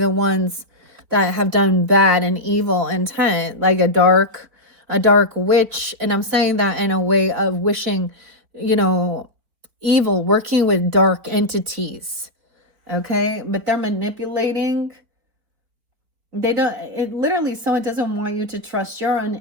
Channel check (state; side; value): late; left; 4.4 ms